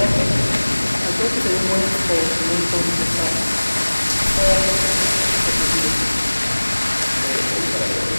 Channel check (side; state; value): both; inverted; correlation -1.00